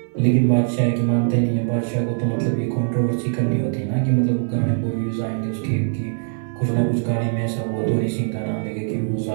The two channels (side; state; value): left; silent; digital silence